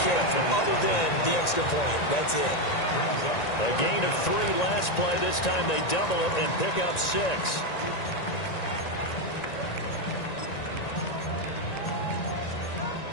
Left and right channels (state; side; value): late; right; 1.9 ms